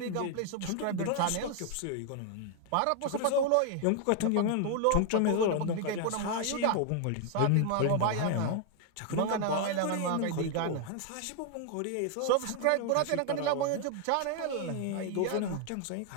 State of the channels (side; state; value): both; different; correlation 0.00